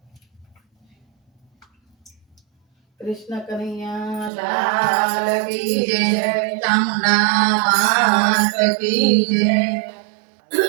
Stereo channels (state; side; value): drops out; left; at 4.3 s